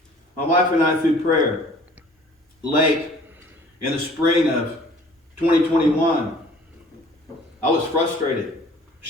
My wife and I, through prayer, late in the spring of 2021, I was frustrated.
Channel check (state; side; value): normal; both; correlation 0.52